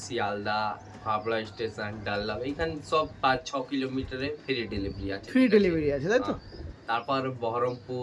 শিয়ালদা, হাবড়া স্টেশন, ডালদা, এইখানে সব 5-6 কিলোমিটারে ফ্রি ডেলিভারি আছে। ফ্রি ডেলিভারি আছে, তাই তো? তারপর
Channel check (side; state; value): both; identical; correlation 1.00